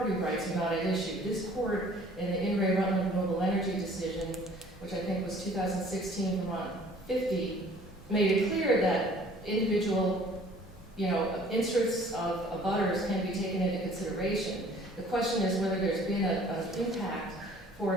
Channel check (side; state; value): both; normal; correlation 0.53